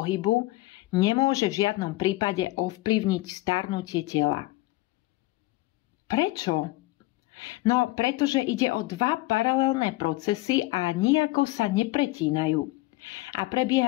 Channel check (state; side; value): quieter; right; 19.5 dB